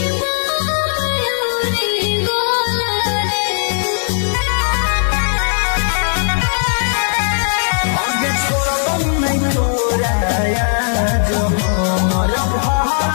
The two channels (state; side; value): silent; right; digital silence